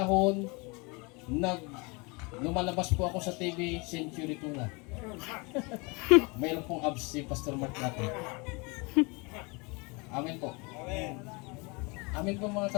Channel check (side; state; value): right; quieter; 28.8 dB